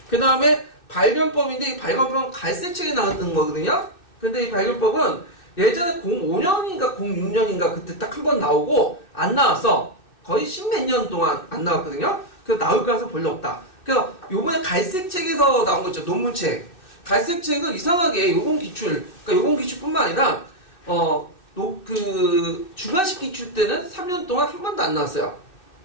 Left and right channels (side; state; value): right; late; 2.6 ms